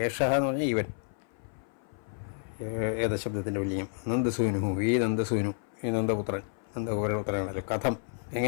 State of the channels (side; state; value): right; silent; 56 dB below the other